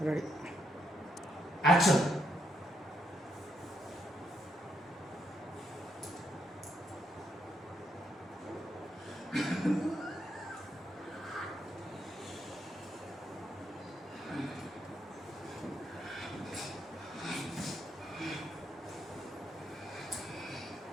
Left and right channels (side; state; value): both; normal; correlation 0.78